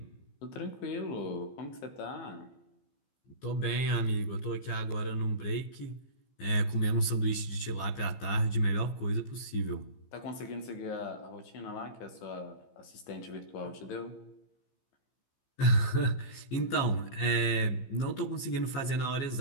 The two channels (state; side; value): late; right; 15 ms